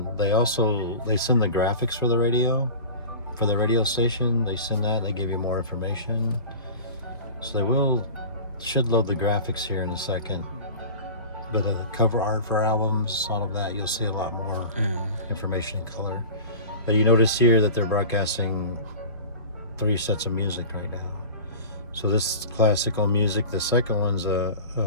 they send the graphics for the radio station. They send that. They give you more information. So they should load the graphics here in a second. But the cover art for albums, all of that, you'll see a lot more information in color. But you notice here that they're broadcasting 3 sets of music right now. So this is classical music. The second one's a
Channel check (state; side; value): inverted; both; correlation -0.36